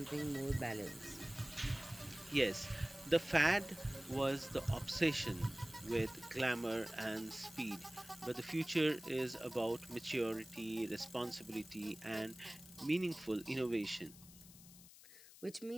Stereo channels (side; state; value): left; noise; hiss, 19 dB below the sound